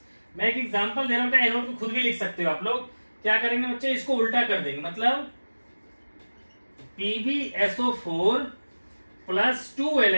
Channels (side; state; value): both; inverted; correlation -1.00